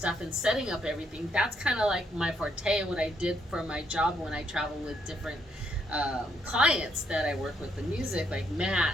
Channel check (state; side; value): normal; both; correlation 0.74